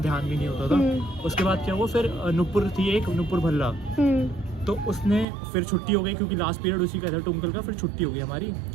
भी नहीं होता था। उसके बाद क्या हुआ, फिर नुपुर थी एक, नुपुर भल्ला, तो उसने फिर छुट्टी हो गई क्योंकि लास्ट पीरियड उसी का था ट्विंकल का। फिर छुट्टी हो गई हमारी,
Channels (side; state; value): left; drops out; at 5.2 s